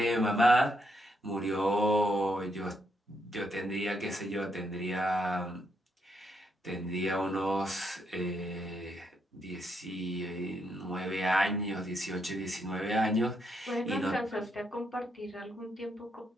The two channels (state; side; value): normal; both; correlation 0.78